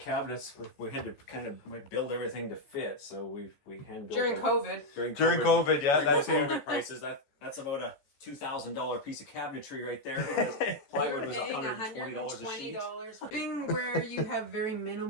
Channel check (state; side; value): late; right; 14 ms